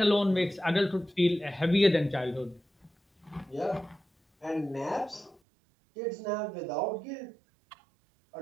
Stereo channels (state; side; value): drops out; left; at 5.4 s